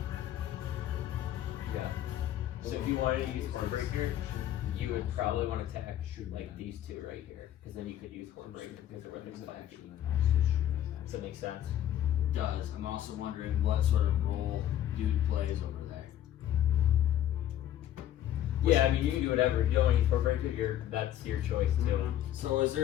Yeah. So if you wanted to use Hornbreaker, you would probably want to attack like these two right here, because then you could use Hornbreaker because they're within 5 feet. Does that make sense? Does. I'm also wondering what sort of role dude plays over there. Yeah, I mean you can do whatever. If you don't want to use Hornbreaker, that's your choice too. So is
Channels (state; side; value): quieter; right; 11.8 dB